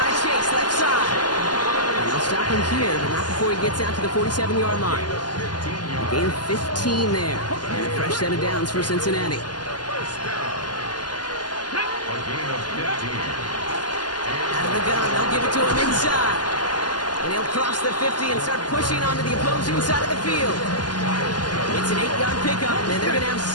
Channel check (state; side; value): late; right; 0.70 ms